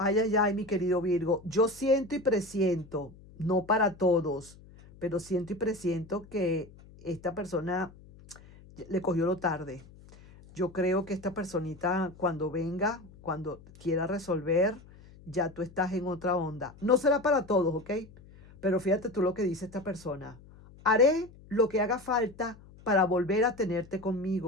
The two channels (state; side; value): noise; left; hum, 22 dB below the sound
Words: Ay, ay, ay, mi querido Virgo. Yo siento y presiento, no para todos, pero siento y presiento que esta persona le cogió lo tarde. Yo creo que esta personita cuando venga, cuando quiera resolver, ya tú estás en otra onda. No será para todos, ¿ok? Pero fíjate tú lo que dice esta persona. Haré lo que haga falta para volver a tenerte